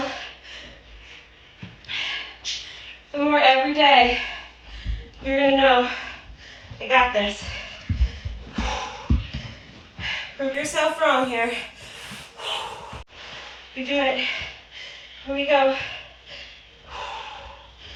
the more every day you're gonna know, I got this. Prove yourself wrong here. You do it. Here we go.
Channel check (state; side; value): identical; both; correlation 1.00